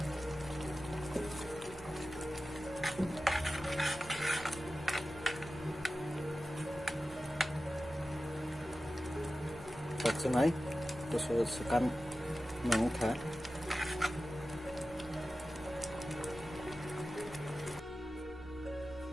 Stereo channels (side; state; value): right; noise; hum, 22 dB below the sound